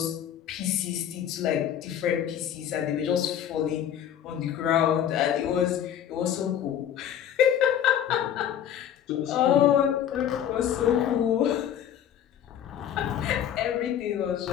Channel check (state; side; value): quieter; right; 9.9 dB